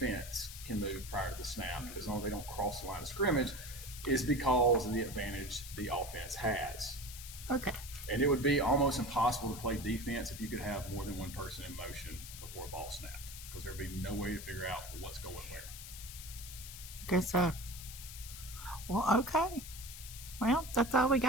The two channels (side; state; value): left; noise; hiss, 12 dB below the sound